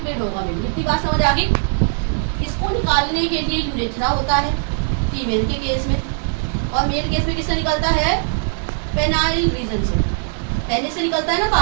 होगा। मेनली इतनी बात समझ आ गई। इसको निकालने के लिए यूरेथ्रा होता है फीमेल के केस में, और मेल केस में किससे निकलता है, पेनाइल रीजन से, पेनिस से निकलता है ना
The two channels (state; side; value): silent; left; 66 dB below the other